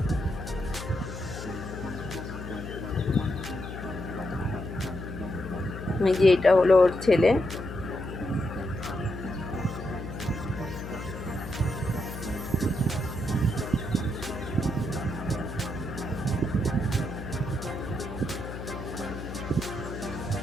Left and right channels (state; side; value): noise; left; hum, 8 dB below the sound